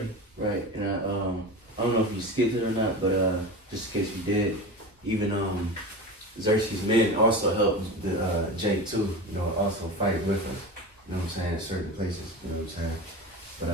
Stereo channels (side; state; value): both; normal; correlation 0.28